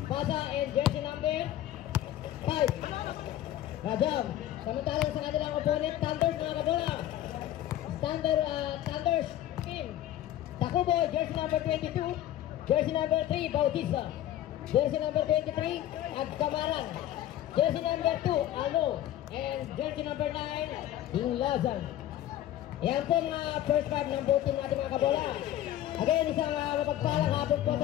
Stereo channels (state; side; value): quieter; right; 12.7 dB